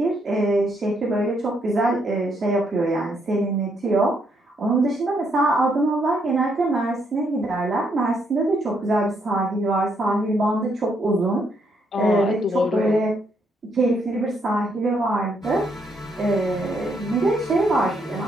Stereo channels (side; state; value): both; normal; correlation 0.74